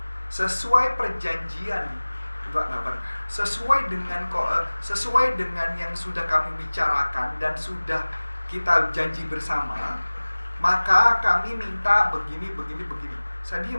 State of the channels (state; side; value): inverted; both; correlation -1.00